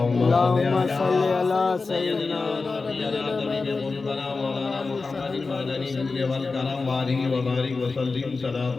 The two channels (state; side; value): quieter; right; 4.1 dB